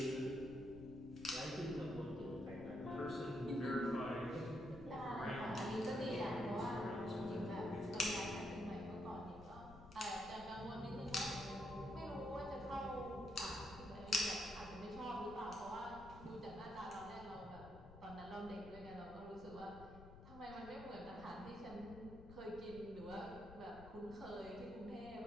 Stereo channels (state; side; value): noise; left; rumble, 15 dB below the sound